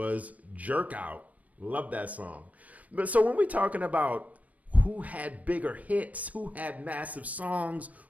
Jerk Out. Love that song. But so when we're talking about who had bigger hits, who had massive songs,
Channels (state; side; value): late; left; 0.070 ms